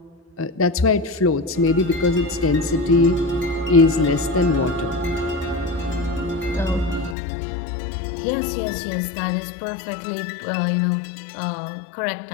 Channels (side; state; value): right; drops out; at 7.2 s